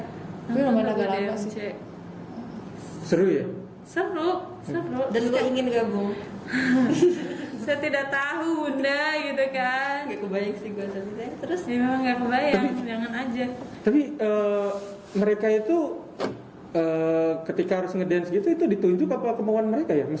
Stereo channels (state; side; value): identical; both; correlation 1.00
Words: Tapi lumayan agak lagu lama DMC. sih. Seru ya? Seru. Dan gue ingin gabung. Saya tidak tahu bunda gitu kan. Gak kebayang sih gue tapi terus. Ya memang nggak kebayang, jangan aja. Tapi mereka itu ketika harus ngedance gitu itu ditunjuk apa kemauan mereka ya?